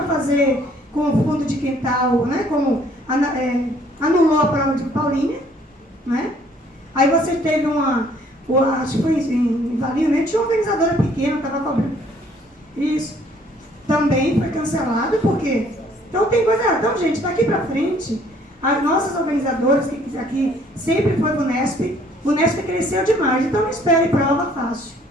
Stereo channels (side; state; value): both; normal; correlation 0.61